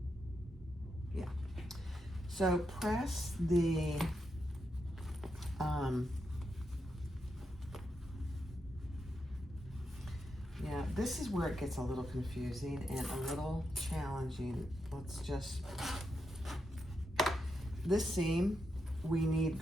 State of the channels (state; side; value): normal; both; correlation 0.85